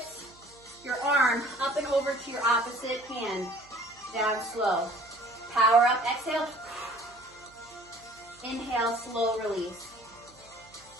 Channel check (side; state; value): right; noise; hum, 27 dB below the sound